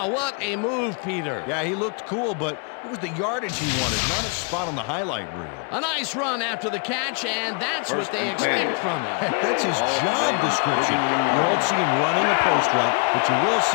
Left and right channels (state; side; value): quieter; right; 39.1 dB